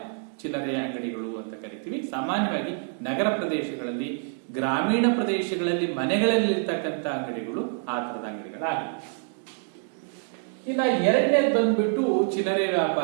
ಚಿಲ್ಲರೆ ಅಂಗಡಿಗಳು ಅಂತ ಕರಿತೀವಿ. ಸಾಮಾನ್ಯವಾಗಿ ನಗರ ಪ್ರದೇಶಗಳಲ್ಲಿ, ಗ್ರಾಮೀಣ ಪ್ರದೇಶಗಳಲ್ಲಿ ಮನೆಗಳಲ್ಲಿ ಇರ್ತಕ್ಕಂಥ ಅಂಗಡಿಗಳು ಆ ತರದ ಅಂಗಡಿಗಳಾಗಿವೆ. ಇನ್ನ ಎರಡನೇದು ಬಂದ್ಬಿಟ್ಟು ಚಿಲ್ಲರೆ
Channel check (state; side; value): silent; left; 61 dB below the other